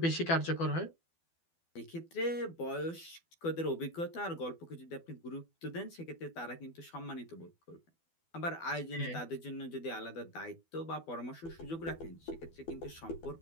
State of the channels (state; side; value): late; right; 12 ms